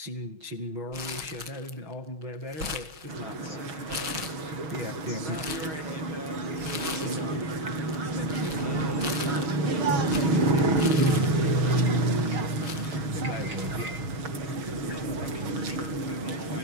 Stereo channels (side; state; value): left; late; 6.3 ms